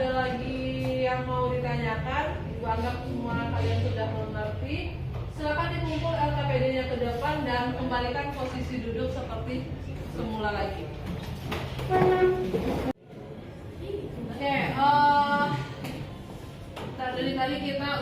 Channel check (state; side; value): identical; both; correlation 1.00